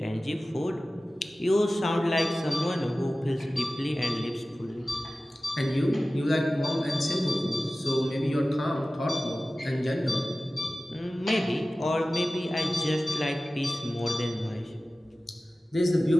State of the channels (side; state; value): both; normal; correlation 0.96